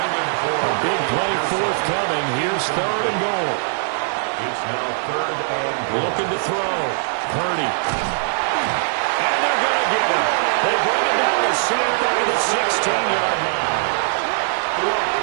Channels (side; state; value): left; silent; digital silence